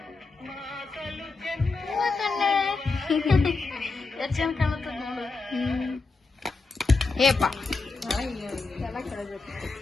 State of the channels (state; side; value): quieter; right; 4.0 dB